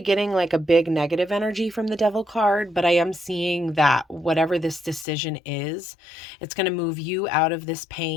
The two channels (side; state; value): right; drops out; at 5.1 s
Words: like a big negative energy from the Devil card, but I am seeing that whatever this decision is, it's going to move you out of this